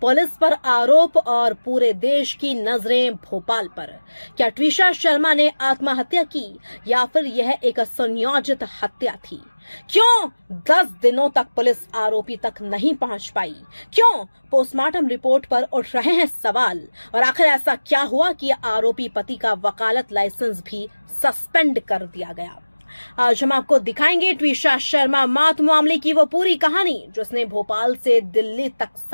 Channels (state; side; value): inverted; both; correlation -1.00